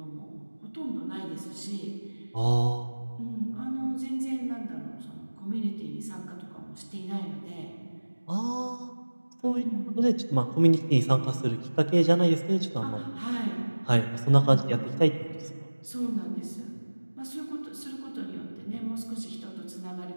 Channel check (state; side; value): inverted; both; correlation -1.00